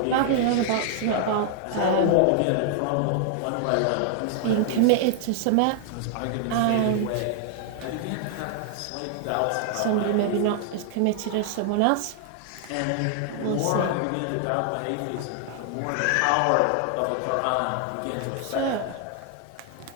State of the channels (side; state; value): both; different; correlation 0.00